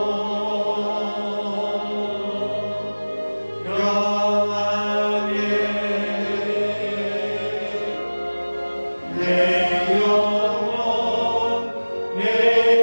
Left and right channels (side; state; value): both; inverted; correlation -1.00